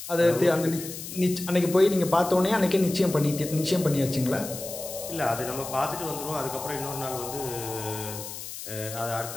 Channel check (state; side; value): noise; left; hiss, 10 dB below the sound